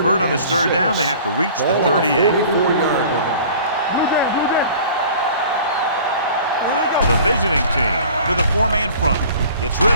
on this third down, they have to reach the 38. The visiting team with a 4-man front gets rid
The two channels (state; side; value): inverted; both; correlation -0.46